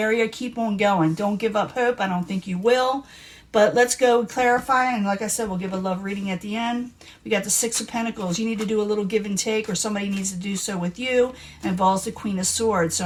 keep on going. Don't give up hope. I don't think you will. But let's go clarify, and like I said, we'll give a love reading at the end. We got the Six of Pentacles. You need to do a little give and take, or somebody needs to do so with you. It involves the Queen of Swords. So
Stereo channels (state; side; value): identical; both; correlation 1.00